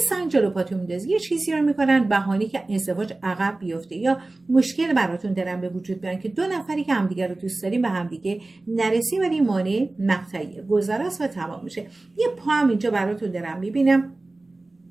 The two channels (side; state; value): left; quieter; 3.0 dB